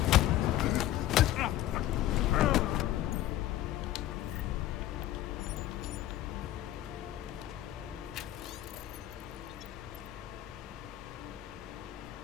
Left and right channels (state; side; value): quieter; right; 13.5 dB